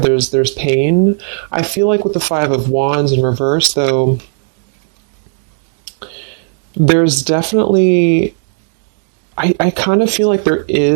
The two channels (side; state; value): left; silent; 70 dB below the other